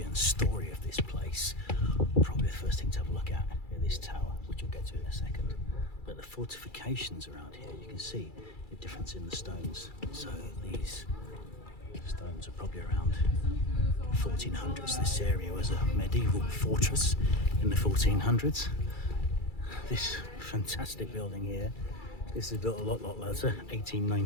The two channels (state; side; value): late; right; 2.3 ms